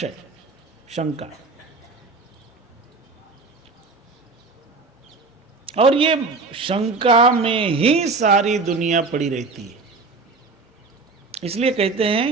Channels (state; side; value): quieter; left; 4.0 dB